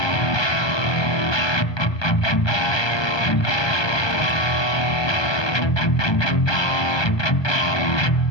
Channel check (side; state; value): right; late; 1.2 ms